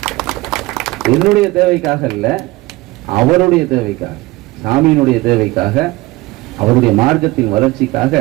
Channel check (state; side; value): quieter; left; 20.6 dB